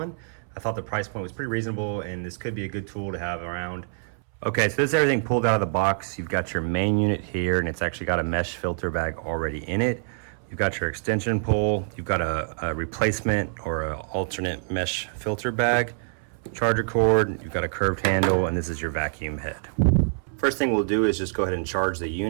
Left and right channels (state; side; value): silent; left; 61 dB below the other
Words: I thought the price point was pretty reasonable and this could be a good tool to have around. Okay, so this is everything pulled out of the box. You've got your main unit here and it's actually got a mesh filter bag already in it. You've got your extension pole, you've got a replacement or an alternate mesh filter bag, charger cord, you've got a curved handle, and this is your vacuum head. First thing we'll do is just go ahead and charge the